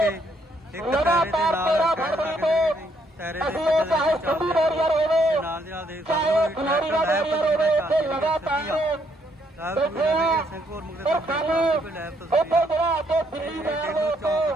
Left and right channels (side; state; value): both; normal; correlation 0.71